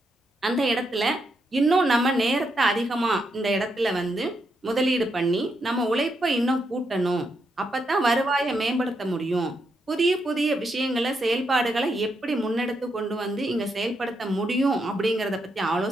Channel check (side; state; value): both; normal; correlation 0.81